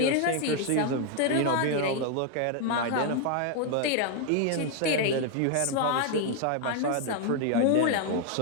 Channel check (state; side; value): different; both; correlation 0.00